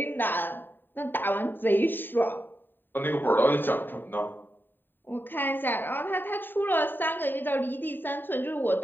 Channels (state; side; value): late; right; 0.093 ms